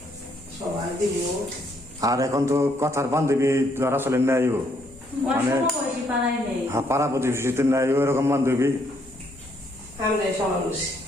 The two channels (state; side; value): normal; both; correlation 0.71